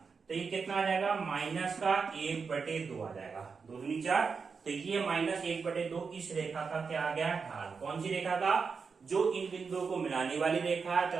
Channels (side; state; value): left; quieter; 5.3 dB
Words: तो ये कितना आ जाएगा माइनस का 1/2 आ जाएगा, 2 दूनी 4। तो ये -1/2 इस रेखा का क्या आ गया ढाल। कौन सी रेखा का, जो इन बिंदुओं को मिलाने वाली रेखा